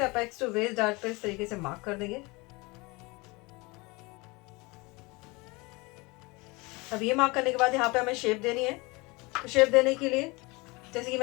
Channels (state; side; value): quieter; right; 25.3 dB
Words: अपेक्स टू वेस्ट डार्ट पे इस तरीके से मार्क कर देंगे। अब ये मार्क करने के बाद यहाँ पे हमें शेप देनी है। तो शेप देने के लिए जैसे कि